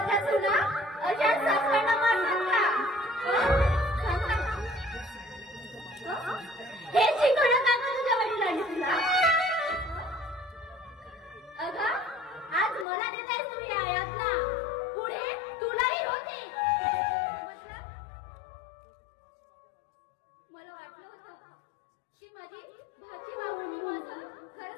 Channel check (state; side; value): drops out; right; at 12.9 s